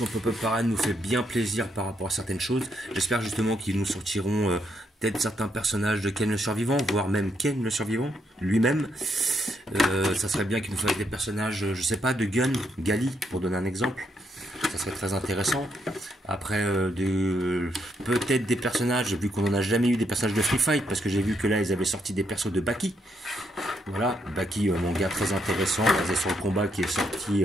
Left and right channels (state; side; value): normal; both; correlation 0.76